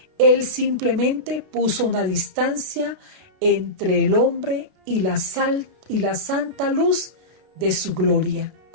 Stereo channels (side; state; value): left; late; 32 ms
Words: Él simplemente puso una distancia entre el hombre y la santa luz de su gloria.